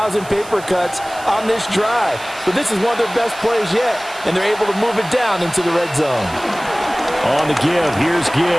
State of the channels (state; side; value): noise; right; hiss, 18 dB below the sound